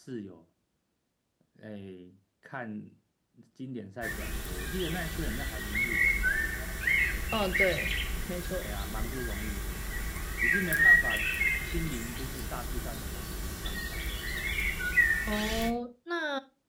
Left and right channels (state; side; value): identical; both; correlation 1.00